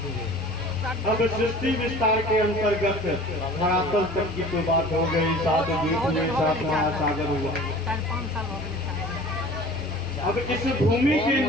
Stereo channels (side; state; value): both; normal; correlation 0.44